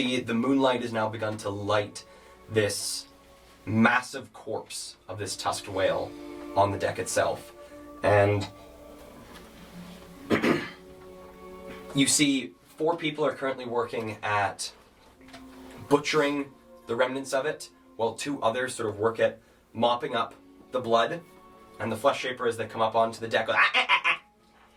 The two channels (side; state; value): both; identical; correlation 1.00